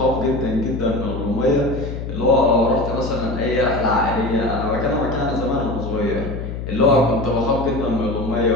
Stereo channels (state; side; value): noise; left; hum, 6 dB below the sound